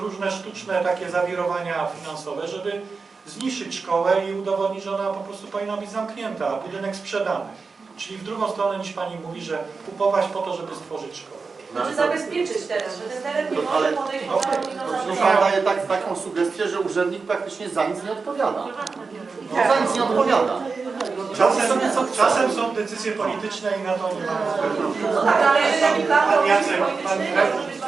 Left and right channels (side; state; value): left; quieter; 4.6 dB